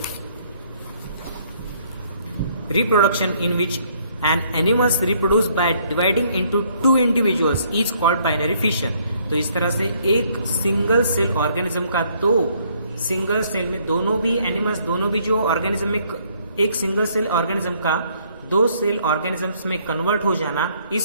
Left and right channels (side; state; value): both; inverted; correlation -0.66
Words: reproduction in which an animal reproduced by dividing into two individuals is called binary fission. तो इस तरह से एक सिंगल सेल ऑर्गेनिज्म का दो सिंगल सेल में दोनों भी एनिमल्स, दोनों भी जो ऑर्गेनिज्म में एक सिंगल सेल ऑर्गेनिज्म का दो सेल ऑर्गेनिजम्स में कन्वर्ट हो जाना,